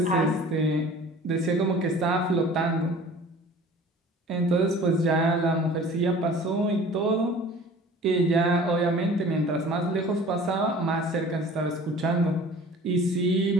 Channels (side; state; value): both; normal; correlation 0.45